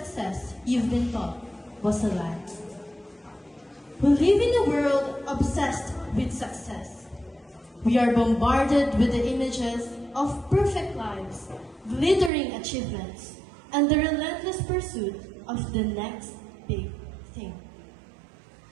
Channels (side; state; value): left; drops out; at 12.3 s